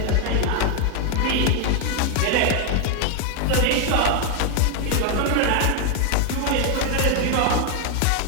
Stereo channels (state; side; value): different; both; correlation 0.01